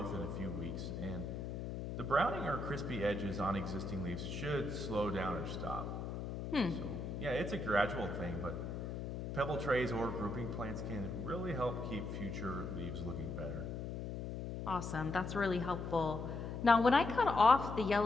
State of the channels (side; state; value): left; noise; hum, 5 dB below the sound